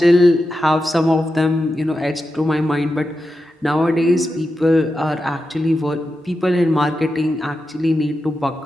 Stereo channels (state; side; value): normal; both; correlation 0.89